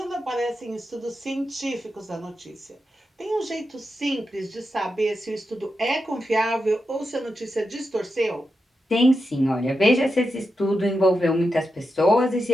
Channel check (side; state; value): both; normal; correlation 0.88